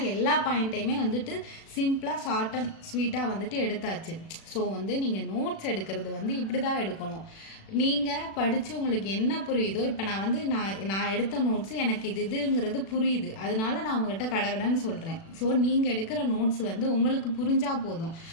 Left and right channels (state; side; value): late; right; 36 ms